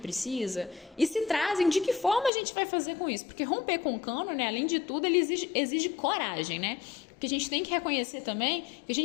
E se trazem, de que forma a gente vai fazer com isso? Porque romper com o cânone, né, além de tudo, ele exige coragem, né? Porque a gente tem que reconhecer também que a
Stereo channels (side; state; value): right; drops out; at 2.3 s